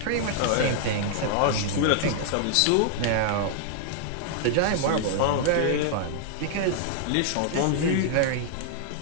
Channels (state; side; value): different; both; correlation -0.01